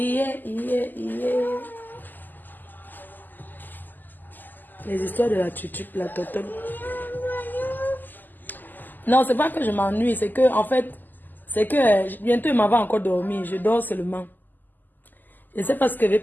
Les histoires de la tutu, la totole. Non, c'est pas que je m'ennuie, c'est que, en fait, c'est que bientôt il m'en va encore dormir. Je dors seulement. Je ne sais pas ce que je vais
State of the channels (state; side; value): late; right; 0.087 ms